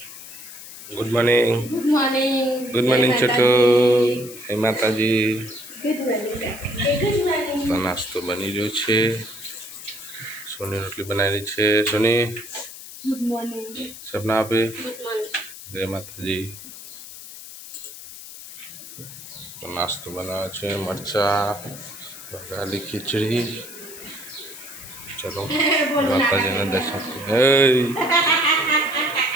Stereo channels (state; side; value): noise; left; hiss, 14 dB below the sound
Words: good morning. Good morning Chhotu. હે માતાજી. તો નાસ્તો બની રહ્યો છે. સોની રોટલી બનાવેલી છે. સોની ગુડ મોર્નિંગ. સપના આપે. Good morning. જય માતાજી. તો નાસ્તો બનાવે છે. મરચા, વઘારેલી ખીચડી. ચલો માતાજીના દર્શન